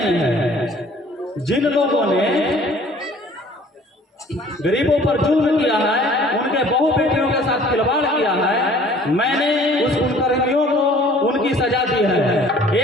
है। जिन लोगों ने गरीबों पर जुल्म किया है, उनके बहु बेटियों के साथ खिलवाड़ किया है, मैंने उस कुकर्मियों को उनकी सजा दी है।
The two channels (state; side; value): normal; both; correlation 0.53